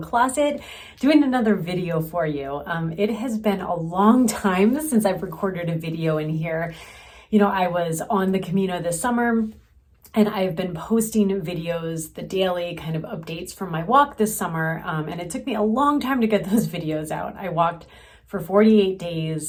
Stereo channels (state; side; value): identical; both; correlation 1.00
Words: doing another video for you. It has been a long time since I've recorded a video in here. I was on the Camino this summer and I've been posting videos, the daily kind of updates from my walk this summer. And it took me a long time to get those videos out. I walked for 48